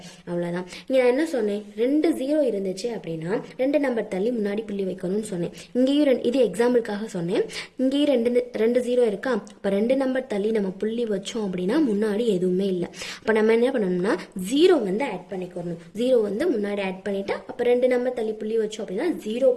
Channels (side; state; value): both; identical; correlation 1.00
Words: அவ்வளோதான். இங்கே நான் என்ன சொன்னேன், 2 0 இருந்துச்சு அப்படின்னா 2 நம்பர் தள்ளி முன்னாடி புள்ளி வைக்கணும்னு சொன்னேன். இங்கேயும் இது எக்ஸாம்பிளுக்காக சொன்னேன். இங்கேயும் 2 0 இருக்கா. அப்போ 2 நம்பர் தள்ளி நம்ம புள்ளி வச்சோம் அப்படின்னா முன்னாடி எதுவுமே இல்லை. அப்போ நம்ம என்ன பண்ணணும்னா 0 ஆட் பண்ணிக்கணும். 0 முன்னாடி ஆட் பண்ணிட்டா அப்போ 2 நம்பர் தள்ளி புள்ளி வச்சோம் அப்படின்னா